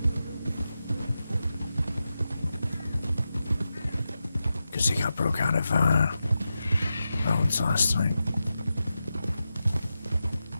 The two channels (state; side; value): inverted; both; correlation -0.90